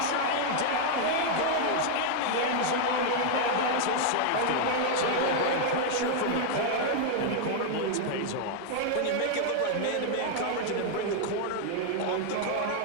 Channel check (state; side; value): different; both; correlation 0.00